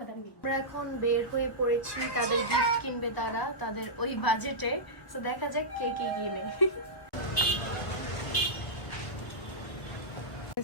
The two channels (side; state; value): right; late; 1.5 ms